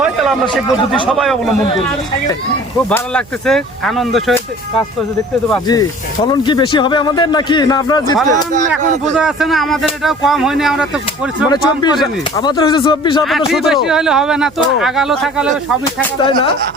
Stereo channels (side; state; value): right; noise; hum, 26 dB below the sound